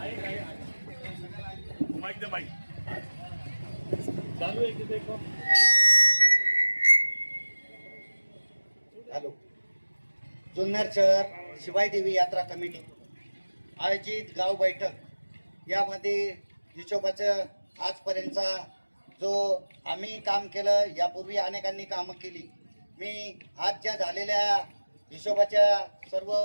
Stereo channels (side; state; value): both; inverted; correlation -1.00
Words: हॅलो. जुन्नर शहर शिवाई देवी यात्रा कमिटी आयोजित गाव बैठक यामध्ये हिशोबाचं आजपर्यंतचा जो आम्ही काम केलं, यापूर्वी अनेकांनी कामं केली. मी आज ज्या झालेल्या हिशोबाच्या सर्व